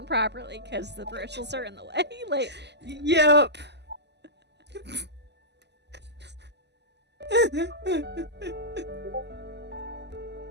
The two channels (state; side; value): late; left; 0.50 ms